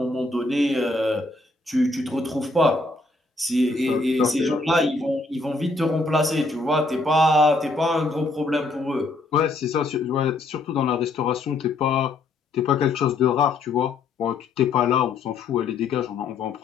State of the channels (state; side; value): quieter; right; 3.3 dB